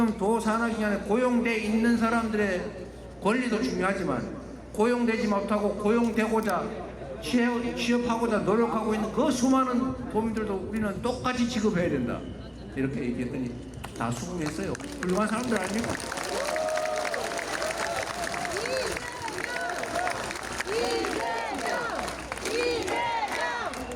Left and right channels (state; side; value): identical; both; correlation 1.00